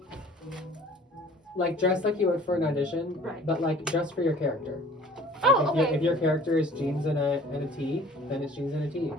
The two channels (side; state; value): both; normal; correlation 0.49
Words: dress like you would for an audition, Right. but like dress for your character. Oh, If okay. your character is jeans and a tee, then it's jeans and a tee.